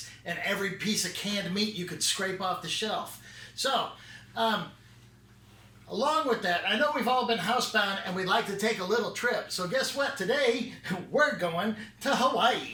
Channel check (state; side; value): identical; both; correlation 1.00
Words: and every piece of canned meat you could scrape off the shelf. So, along with that, I know we've all been housebound and we'd like to take a little trip. So guess what? Today, we're going to